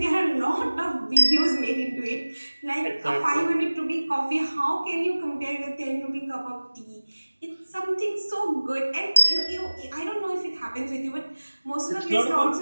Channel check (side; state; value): both; inverted; correlation -1.00